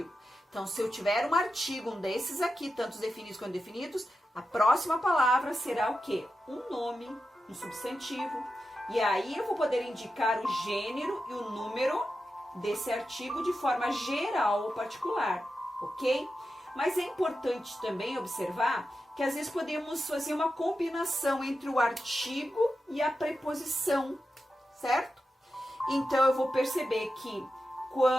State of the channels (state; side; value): normal; both; correlation 0.90